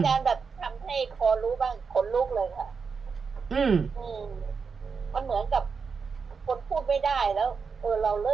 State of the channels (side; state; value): left; quieter; 5.4 dB